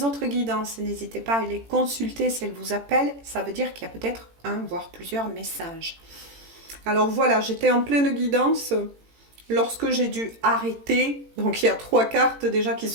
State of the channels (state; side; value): late; left; 18 ms